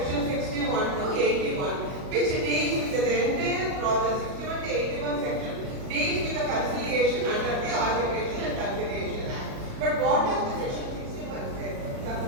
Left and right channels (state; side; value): late; left; 37 ms